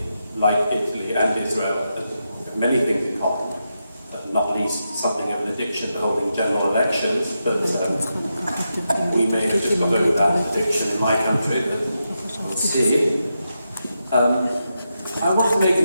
like Italy and Israel, have many things in common, not least something of an addiction to holding general elections, but we may have just got over that addiction in my country, but we'll see. I want to make a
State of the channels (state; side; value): inverted; both; correlation -0.86